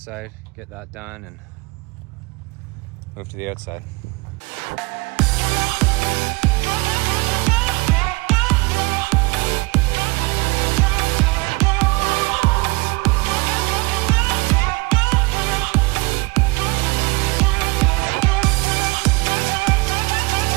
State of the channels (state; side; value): quieter; left; 25.3 dB